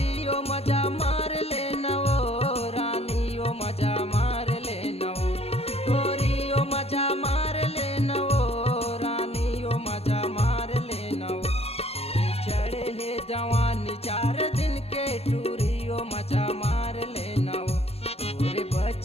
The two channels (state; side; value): late; right; 0.29 ms